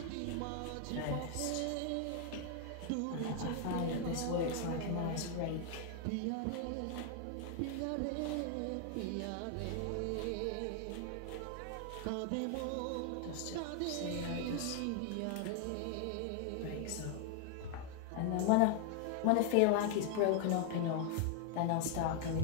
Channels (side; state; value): both; different; correlation 0.00